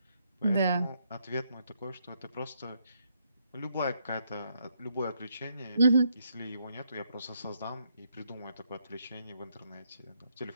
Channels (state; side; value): inverted; both; correlation -0.75